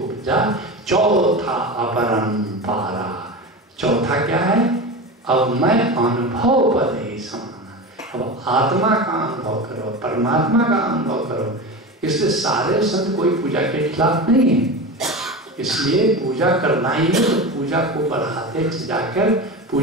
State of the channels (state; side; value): normal; both; correlation 0.26